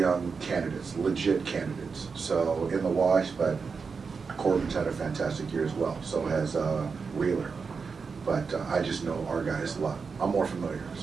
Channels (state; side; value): quieter; left; 5.2 dB